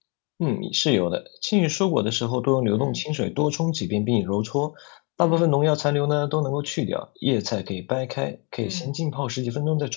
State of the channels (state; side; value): quieter; right; 32.0 dB